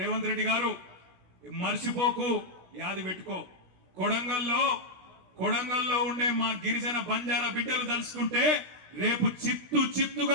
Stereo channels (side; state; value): left; late; 16 ms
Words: రేవంత్ రెడ్డి గారు మర్చిపోకు, యాది పెట్టుకో. కొడంగల్లో ఉండే మా గిరిజన బంజారా బిడ్డలు తలుసుకుంటే రేపు